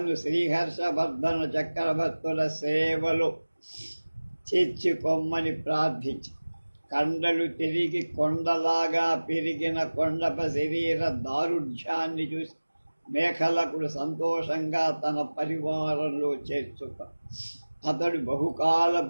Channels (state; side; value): inverted; both; correlation -1.00